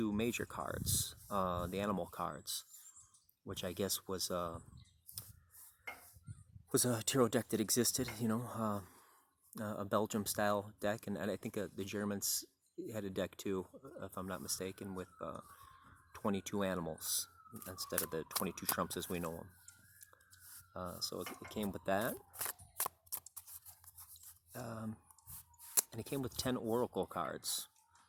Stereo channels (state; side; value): identical; both; correlation 1.00